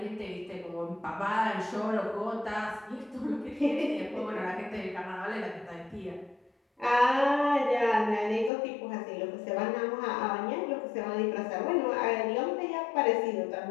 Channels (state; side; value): drops out; right; at 8.5 s